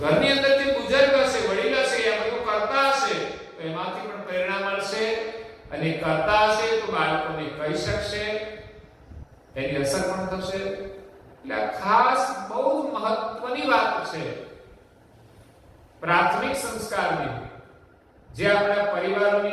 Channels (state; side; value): identical; both; correlation 1.00